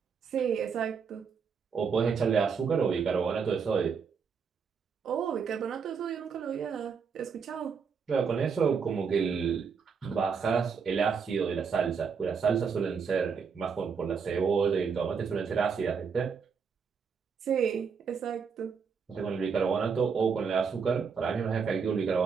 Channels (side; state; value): left; quieter; 6.0 dB